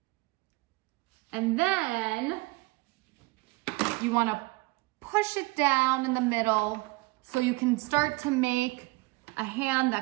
And then you wanna push it down in the middle so you can start to make a hand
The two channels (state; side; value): quieter; left; 24.5 dB